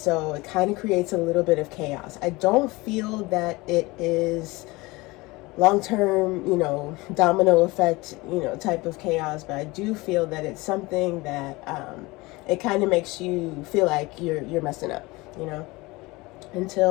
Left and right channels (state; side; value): quieter; right; 22.4 dB